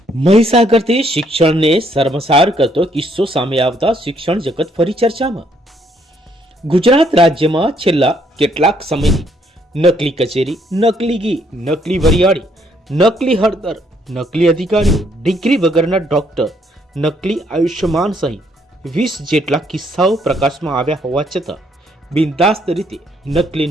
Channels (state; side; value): normal; both; correlation 0.69